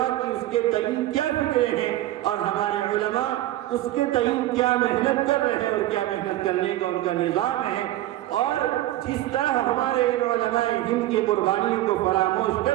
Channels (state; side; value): quieter; left; 15.1 dB